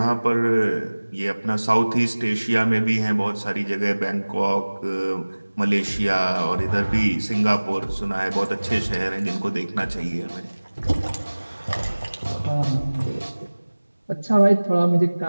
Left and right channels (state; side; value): inverted; both; correlation -1.00